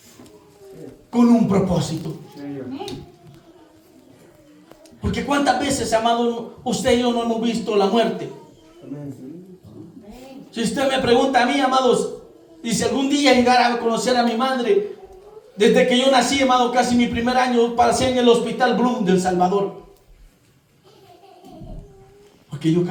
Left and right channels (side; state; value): both; identical; correlation 1.00